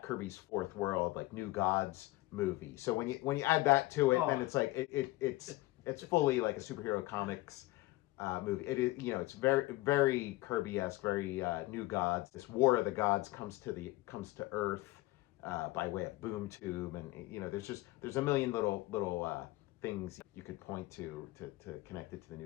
Kirby's Fourth World, like New Gods movie. So when you add that to it, then it's like it's fully like a superhero comics movie. It is, it's very, very Kirby-esque, very New Gods. This War of the Gods comes to Earth by way of Boom Tube, and there's a million little things you could point to connect it to the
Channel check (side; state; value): right; quieter; 19.3 dB